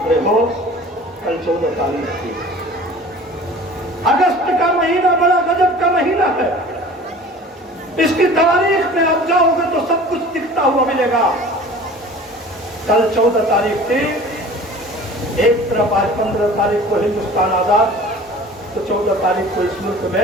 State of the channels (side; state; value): both; normal; correlation 0.43